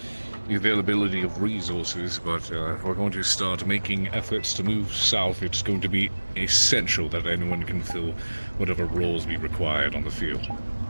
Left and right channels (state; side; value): inverted; both; correlation -1.00